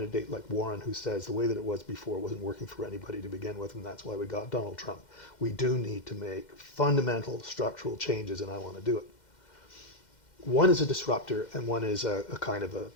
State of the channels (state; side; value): late; right; 2.1 ms